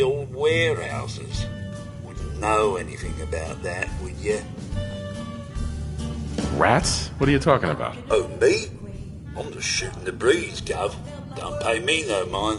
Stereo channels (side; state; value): both; identical; correlation 1.00